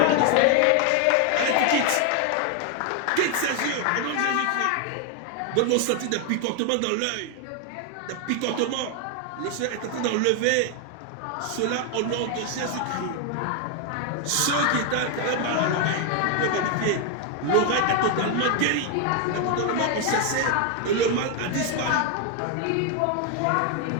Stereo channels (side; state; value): both; different; correlation 0.00